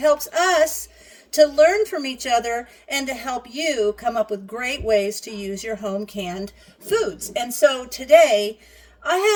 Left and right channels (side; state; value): both; identical; correlation 1.00